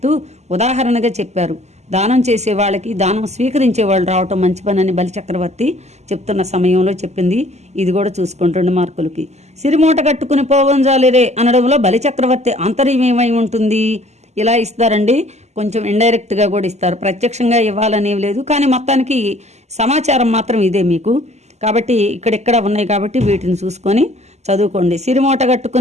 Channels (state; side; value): late; left; 0.33 ms